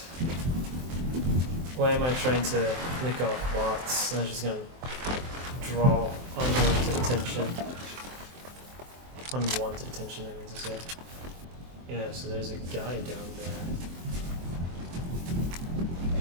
Why am I trying to nick off bots? I'm just gonna draw unwanted attention. Unwanted attention, I mean to say. Yeah, so there's a guy down there.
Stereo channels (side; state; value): left; late; 23 ms